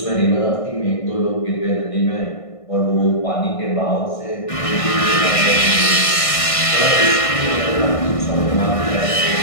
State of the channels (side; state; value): right; late; 1.6 ms